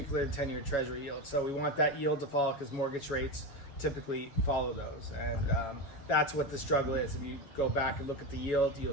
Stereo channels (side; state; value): right; late; 7.1 ms